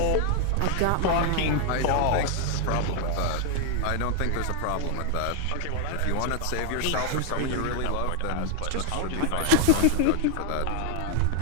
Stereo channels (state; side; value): different; both; correlation 0.00